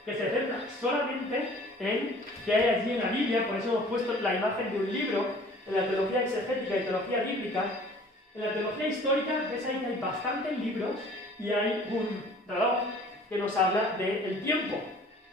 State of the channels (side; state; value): both; normal; correlation 0.50